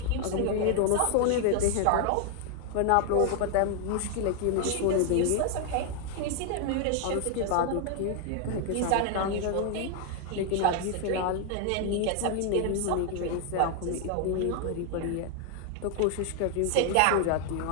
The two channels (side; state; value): both; different; correlation 0.00